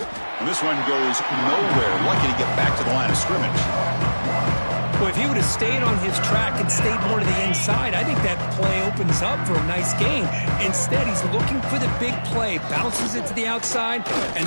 And this one goes nowhere. Lucky to get back to the line of scrimmage. Well, if he would have stayed on his track and stayed more to the inside, I think that play opens up for a nice gain. Instead, he's looking for the big play, bounces it to the outside, and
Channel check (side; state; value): both; inverted; correlation -1.00